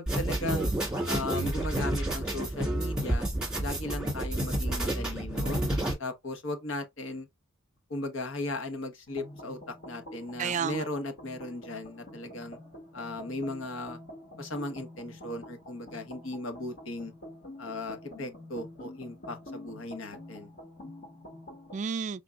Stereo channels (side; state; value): both; normal; correlation 0.60